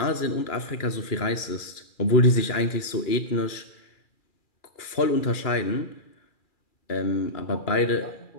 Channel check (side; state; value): right; late; 2.4 ms